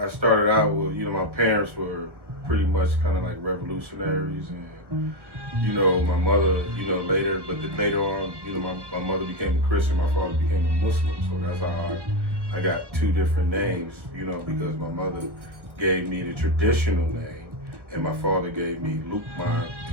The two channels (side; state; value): left; late; 1.1 ms